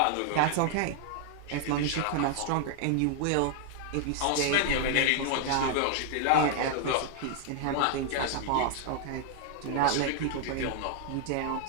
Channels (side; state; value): both; different; correlation 0.00